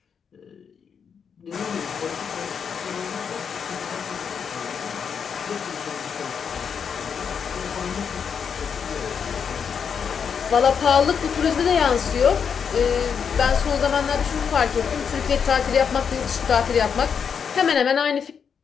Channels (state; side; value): quieter; right; 6.8 dB